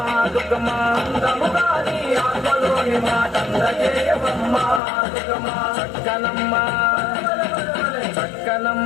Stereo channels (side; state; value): right; drops out; at 4.8 s